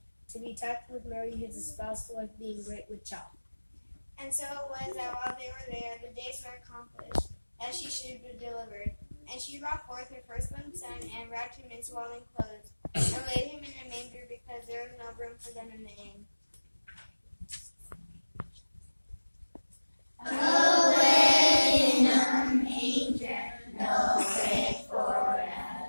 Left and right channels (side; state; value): both; inverted; correlation -1.00